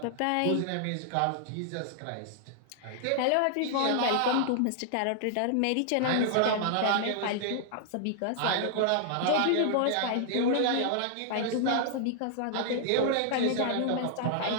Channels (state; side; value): different; both; correlation -0.01